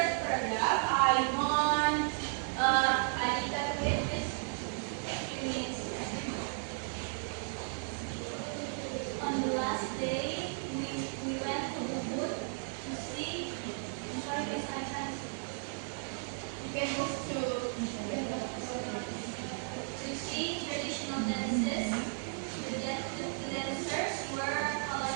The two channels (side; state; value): left; silent; 55 dB below the other